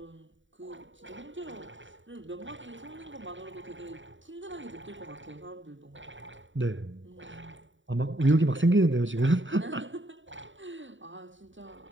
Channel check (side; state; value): left; late; 0.55 ms